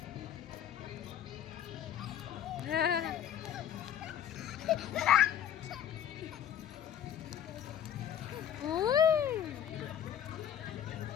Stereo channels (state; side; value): quieter; right; 9.8 dB